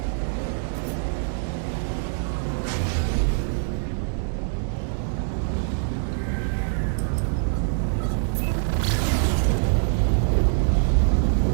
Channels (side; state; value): left; silent; digital silence